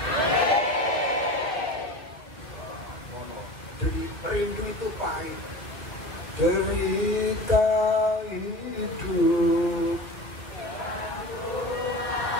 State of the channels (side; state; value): right; late; 2.1 ms